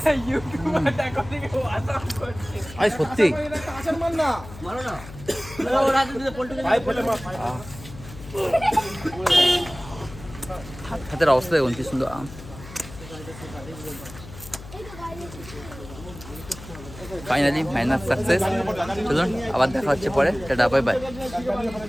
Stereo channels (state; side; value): noise; left; hum, 15 dB below the sound